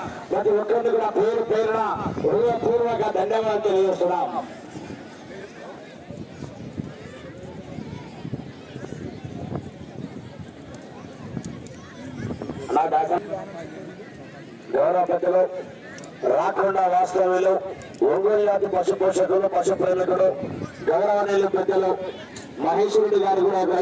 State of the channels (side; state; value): both; identical; correlation 1.00